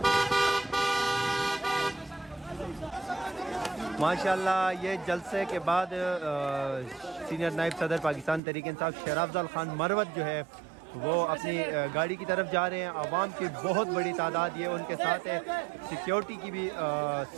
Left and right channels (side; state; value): left; drops out; at 8.4 s